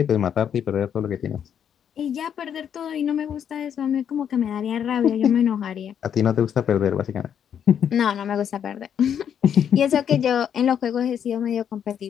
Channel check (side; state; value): right; quieter; 8.6 dB